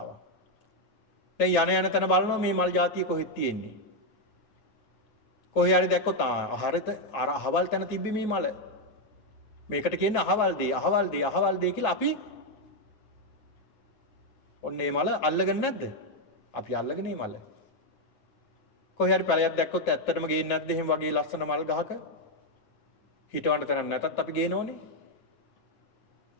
දැන් යන තැන බලනවා මේ මල් జాතිය කොහෙද තියෙන්නේ? කොහේ හරි දැක්කොත් ආහාරෙත අර අහවල් තැන තිබ්බි මේ මල. මේකට කියන්නේ අහවල් දේ කියලා අපි ඔන්න මේ මල අල්ලගෙන නැද්ද? අපි අල්ලගෙන මේ මල. කොහේ හරි පැලයක් දැක්කොත් ඇත්තටම ගේන්නේ නැද්ද එහෙම වගේ ලස්සන මල් ගහක? හිටවන්න තැනක් නැතත් අපි ගේනෝනේ.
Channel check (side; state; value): right; late; 9.3 ms